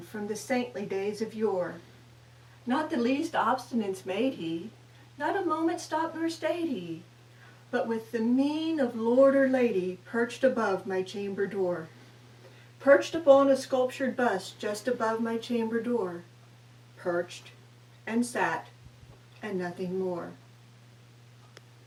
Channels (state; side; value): identical; both; correlation 1.00